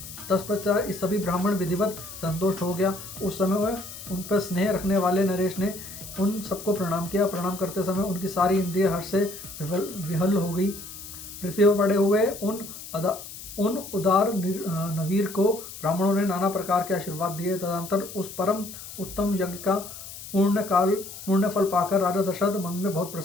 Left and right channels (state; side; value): noise; left; hiss, 13 dB below the sound